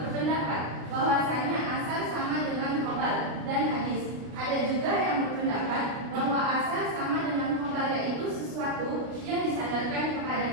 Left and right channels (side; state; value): left; late; 33 ms